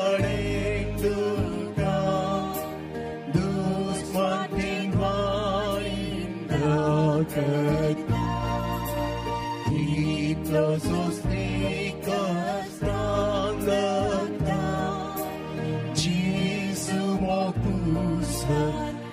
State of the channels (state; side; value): identical; both; correlation 1.00